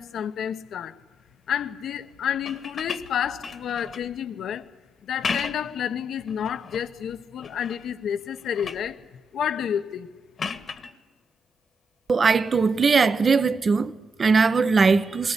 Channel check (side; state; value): both; normal; correlation 0.81